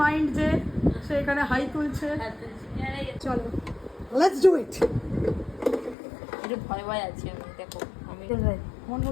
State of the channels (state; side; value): drops out; right; at 6.0 s